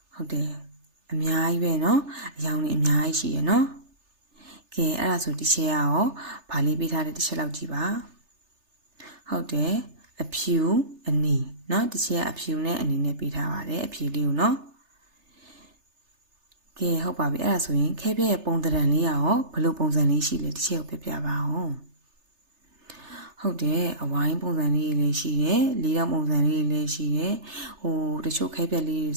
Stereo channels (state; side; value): late; left; 3.3 ms